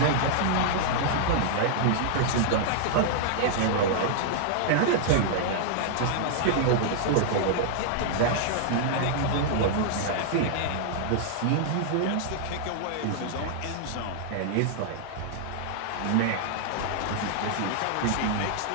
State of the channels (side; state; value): both; different; correlation -0.01